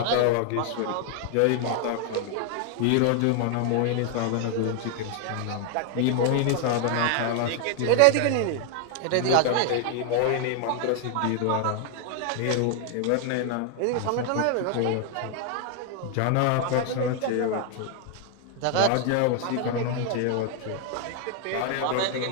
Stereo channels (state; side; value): different; both; correlation 0.00